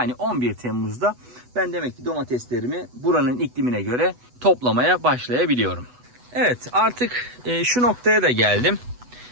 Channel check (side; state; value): left; late; 8.1 ms